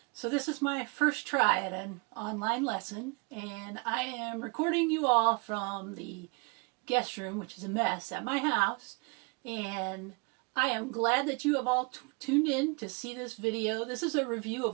so this is my first try at an online lesson, and I am recording you all from the guest room, which is a mess, at my house, and I am glad that you have all tuned in to see this video. This is a review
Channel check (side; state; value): left; quieter; 31.3 dB